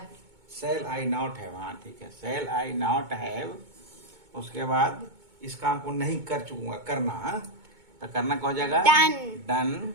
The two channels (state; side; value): late; left; 2.2 ms